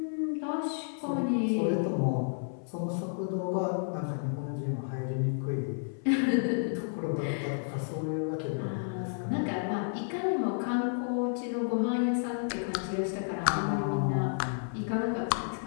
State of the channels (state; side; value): silent; right; 57 dB below the other